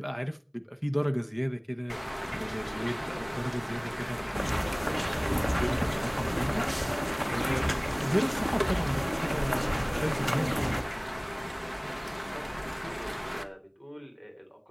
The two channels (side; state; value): both; identical; correlation 1.00